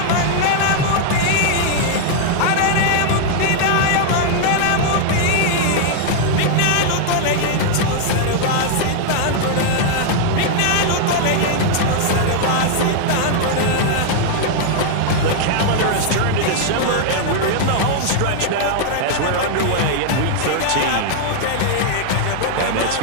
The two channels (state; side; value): different; both; correlation 0.00